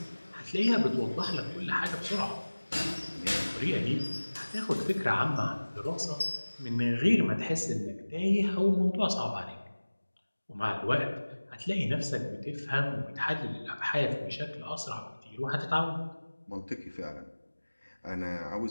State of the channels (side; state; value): both; inverted; correlation -1.00